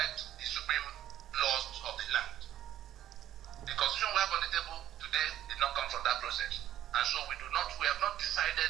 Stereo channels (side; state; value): left; quieter; 12.1 dB